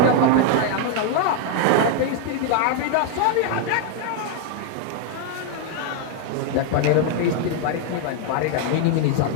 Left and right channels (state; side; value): different; both; correlation 0.01